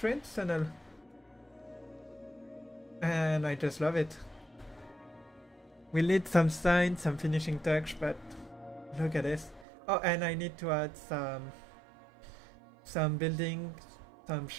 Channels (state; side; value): drops out; left; at 9.7 s